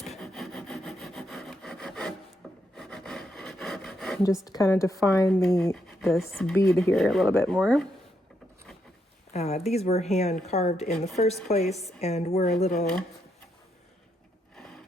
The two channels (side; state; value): both; normal; correlation 0.79